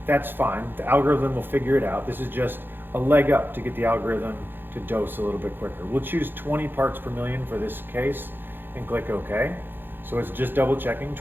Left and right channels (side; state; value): left; late; 0.098 ms